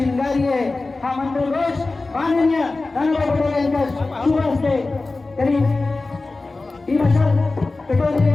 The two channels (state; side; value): quieter; right; 3.4 dB